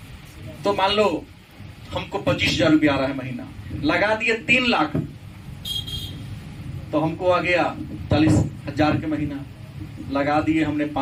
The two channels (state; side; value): identical; both; correlation 1.00